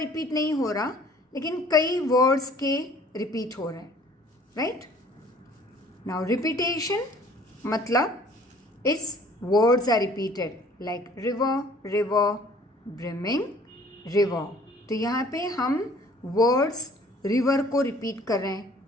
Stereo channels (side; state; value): both; normal; correlation 0.54